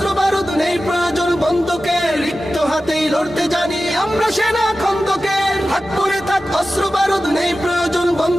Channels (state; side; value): normal; both; correlation 0.94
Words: বারুদ, নেই প্রয়োজন বন্দুকের। রিক্ত হাতেই লড়তে জানি আমরা সেনা খন্দকের। থাক পরে থাক অস্ত্র বারুদ, নেই প্রয়োজন